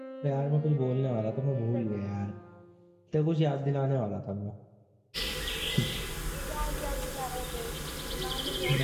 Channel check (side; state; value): both; identical; correlation 1.00